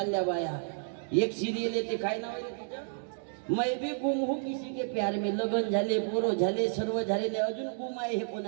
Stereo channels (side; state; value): left; silent; digital silence